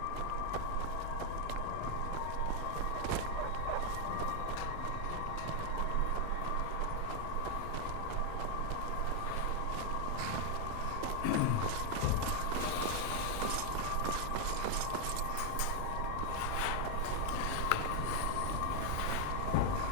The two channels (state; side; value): different; both; correlation 0.00